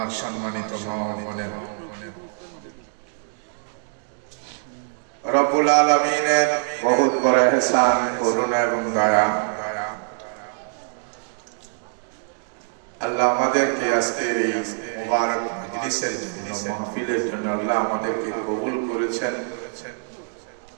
সম্মানিত মা ও বোনেরা রব্বুল আলামিনের বহুত বড় ইহসান করুণা এবং দয়া আল্লাহ আমাদেরকে আজকের এই মুবারক মজলিসের জন্য মাহফিলের জন্য আল্লাহ আমাদেরকে কবুল করেছেন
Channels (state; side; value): silent; left; digital silence